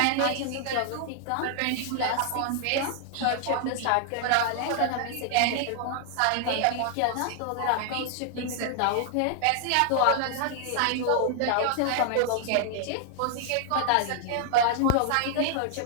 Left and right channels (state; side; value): different; both; correlation 0.00